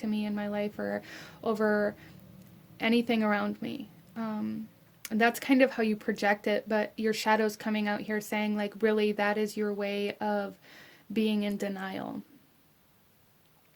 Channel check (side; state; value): both; identical; correlation 1.00